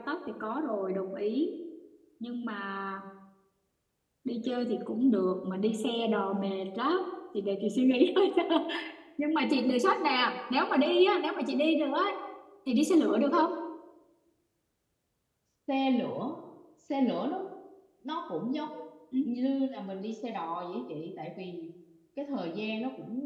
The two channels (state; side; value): identical; both; correlation 1.00